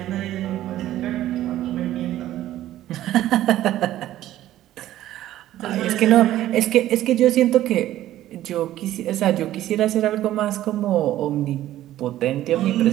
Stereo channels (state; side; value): quieter; left; 13.6 dB